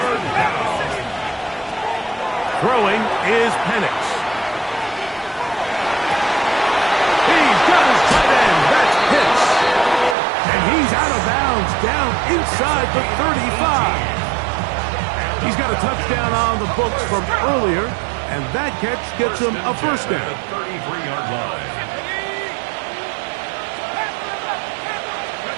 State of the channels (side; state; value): left; drops out; at 10.2 s